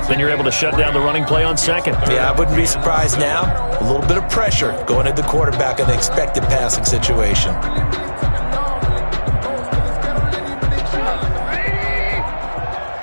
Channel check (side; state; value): both; inverted; correlation -1.00